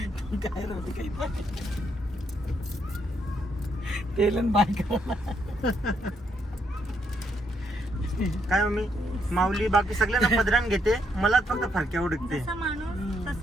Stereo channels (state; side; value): normal; both; correlation 0.75